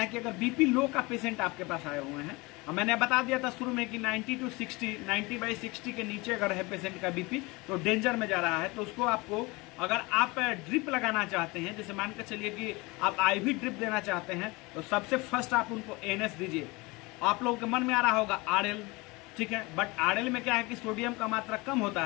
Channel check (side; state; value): right; quieter; 24.5 dB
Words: कि अगर बीपी लो का पेशेंट आपके पास आए हुए हैं, मैंने बता दिया था शुरू में कि 90/60 के नीचे अगर है पेशेंट का बीपी तो डेंजर में जा रहा है, तो उसको आपको, अगर आप ड्रिप लगाना चाहते हैं, जैसे मान कर चलिए कि आप IV ड्रिप देना चाहते हैं, तो सबसे फर्स्ट आप उनको NS दीजिए। आप लोगों के मन में आ रहा होगा RL, ठीक है, बट RL में क्या है कि सोडियम का मात्रा कम होता